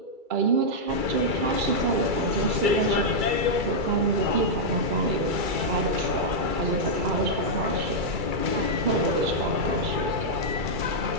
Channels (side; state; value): left; late; 2.3 ms